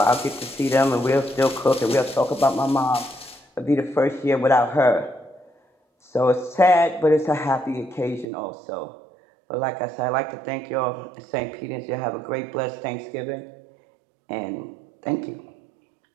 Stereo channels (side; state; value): left; drops out; at 8.2 s